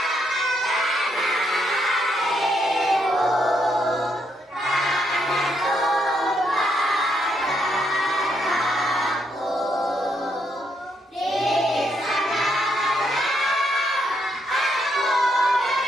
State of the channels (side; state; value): both; normal; correlation 0.76